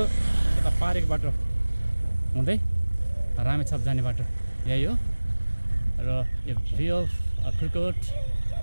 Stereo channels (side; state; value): both; inverted; correlation -1.00